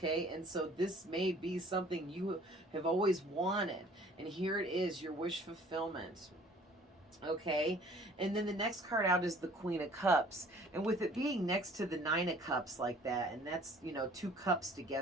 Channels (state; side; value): normal; both; correlation 0.53